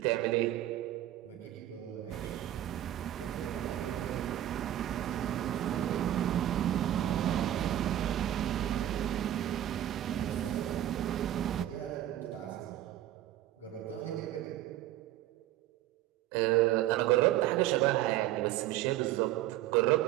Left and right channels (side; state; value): left; quieter; 13.0 dB